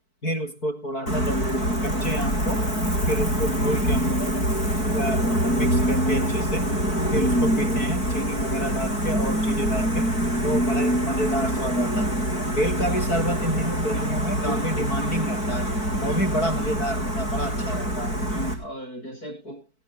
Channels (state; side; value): late; right; 4.6 ms